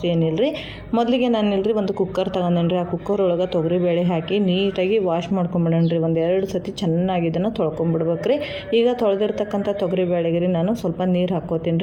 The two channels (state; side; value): identical; both; correlation 1.00